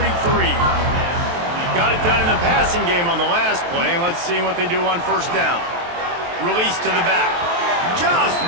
Got it done in the passing game on the last play. Let's see what they do on 1st down. Release to the back. Just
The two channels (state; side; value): late; left; 23 ms